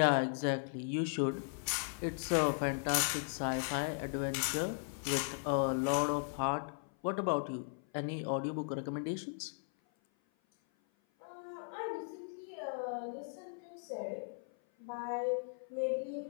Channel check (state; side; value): silent; right; 53 dB below the other